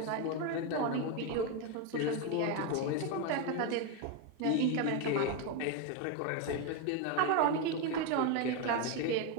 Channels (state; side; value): different; both; correlation 0.02